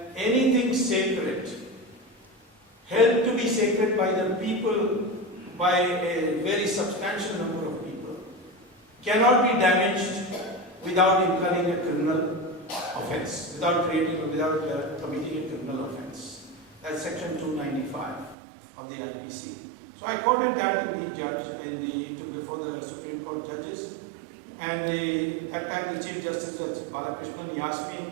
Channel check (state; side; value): drops out; left; at 18.4 s